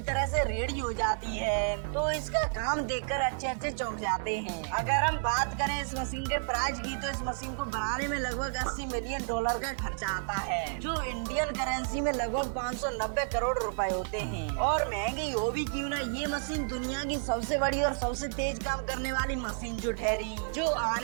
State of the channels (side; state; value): left; silent; digital silence